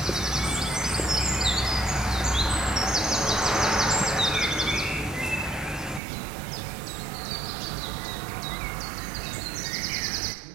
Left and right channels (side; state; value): left; drops out; at 6.0 s